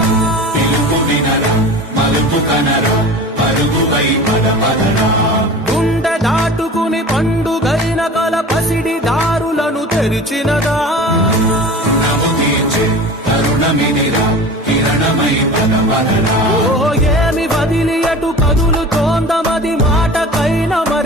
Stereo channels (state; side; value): normal; both; correlation 0.37